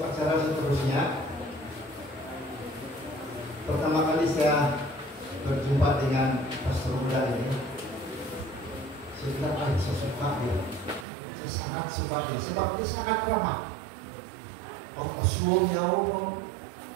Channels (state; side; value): drops out; left; at 11.1 s